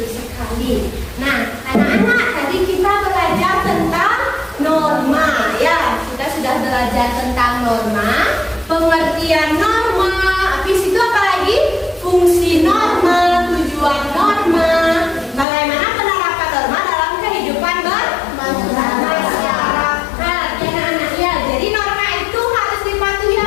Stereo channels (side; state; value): right; drops out; at 15.5 s